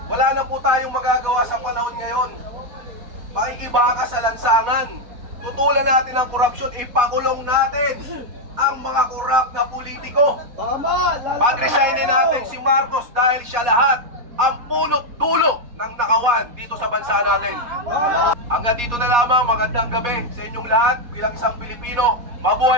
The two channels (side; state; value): left; late; 4.2 ms